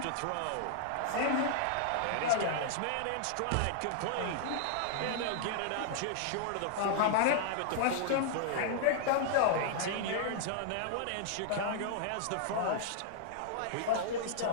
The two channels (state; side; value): different; both; correlation -0.01